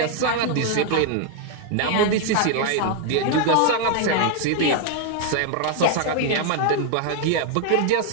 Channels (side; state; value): both; different; correlation 0.00